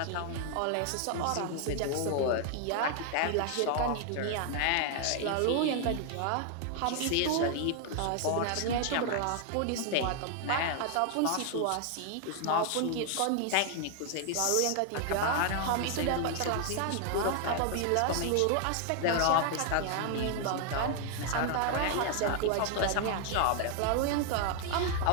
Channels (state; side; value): different; both; correlation 0.00